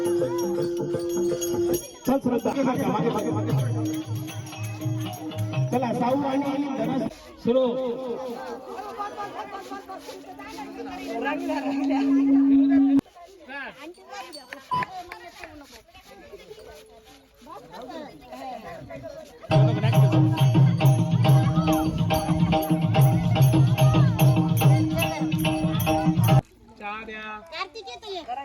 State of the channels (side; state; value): both; identical; correlation 1.00